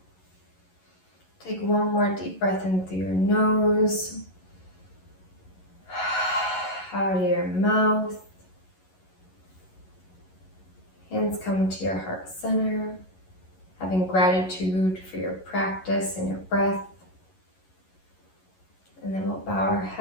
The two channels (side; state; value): right; late; 11 ms